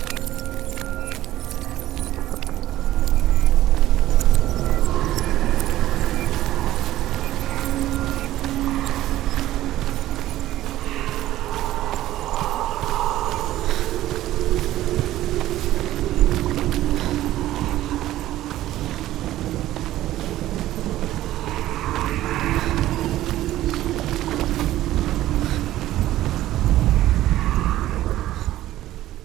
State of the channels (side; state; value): left; quieter; 14.5 dB